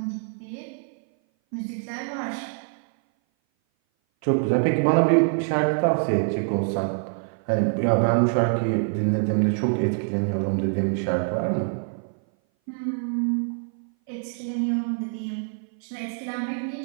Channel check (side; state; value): left; silent; 58 dB below the other